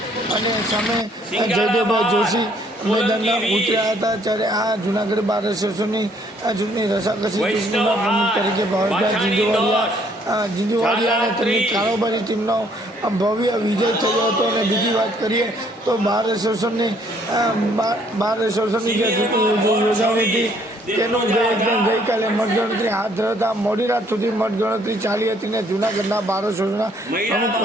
અને સામે જયદેવભાઈ જોશી મેદાનમાં ઉતર્યા હતા। ત્યારે આ જૂનાગઢ બાર એસોસિએશનની ચૂંટણી રસાકસી ચૂંટણીમાં પ્રમુખ તરીકે ભાવેશભાઈ ઝીંઝુવાડિયા અને તેમની કારોબારી ટીમનો ભવ્ય વિજય થયો હતો। અને બીજી વાત કરીએ તો બાર એસોસિએશનની જે ચૂંટણી યોજાણી હતી તેનું ગઈકાલે મતગણતરી હાથ ધરતા મોડી રાત સુધી મતગણતરી ચાલી હતી ને જૂનાગઢના બાર એસોસિએશનના પ્રમુખ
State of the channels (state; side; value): normal; both; correlation 0.64